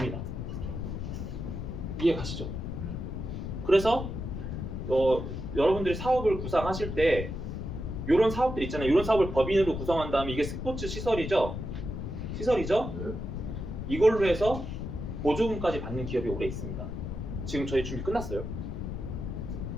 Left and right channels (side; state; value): left; noise; rumble, 5 dB below the sound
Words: 이해 가시죠? 그래서 여러분들이 사업을 구상하실 때 이런 사업들 있잖아요. 이런 사업을 법인으로 구성한 다음에 이게 스포츠 시설이죠? 네. 이걸로 해서 보조금까지 받는 기업이 오래 있습니다. 지금 저희 준비 끝났어요.